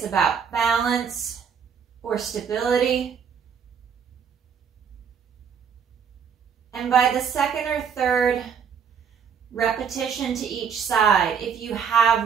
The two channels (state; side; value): quieter; left; 7.1 dB